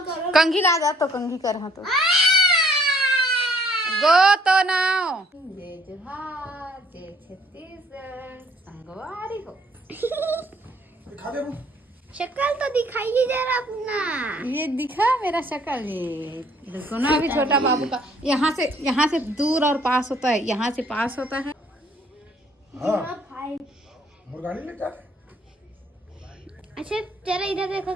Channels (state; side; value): normal; both; correlation 0.62